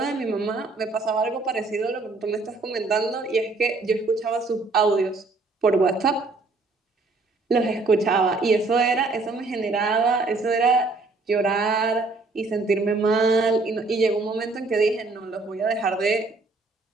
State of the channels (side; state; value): left; quieter; 3.6 dB